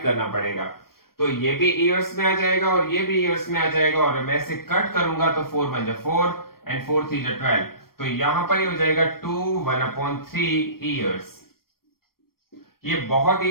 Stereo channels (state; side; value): late; right; 0.94 ms